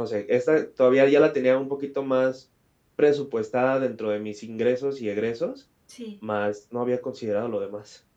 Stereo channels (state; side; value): identical; both; correlation 1.00